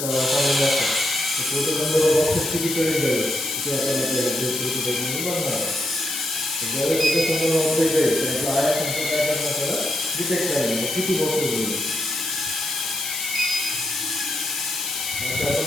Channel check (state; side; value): noise; left; hiss, 3 dB below the sound